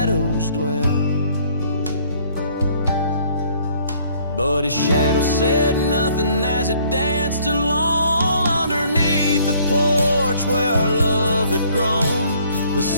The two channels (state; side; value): inverted; both; correlation -0.60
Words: dwell. But his shadow said nothing as it danced along underneath the porch where our love had grown. The